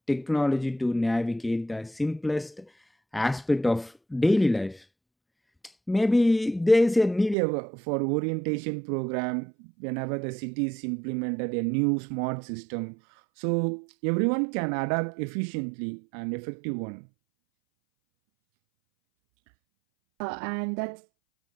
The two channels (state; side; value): drops out; left; at 7.4 s